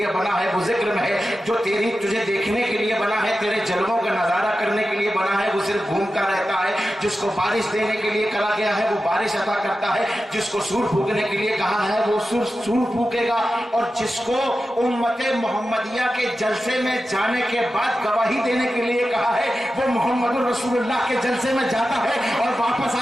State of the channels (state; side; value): normal; both; correlation 0.92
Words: بنا ہے وہ ذکر میں ہے، جو تجھے دیکھنے کے لیے بنا ہے، تیرے جلووں کا نظارہ کرنے کے لیے بنا ہے وہ صرف گھومتا رہتا ہے، جس کو بارش دینے کے لیے کہا گیا ہے وہ بارش عطا کرتا ہے، جس کو سور پھونکنے کے لیے کہا ہے وہ سور پھونکے گا، اور جس کو امت محمدیہ کے جلسے میں جانے کے بعد گواہی دینے کے لیے کہا ہے وہ محمد رسول اللہ کے جلسے میں جاتا ہے اور واپس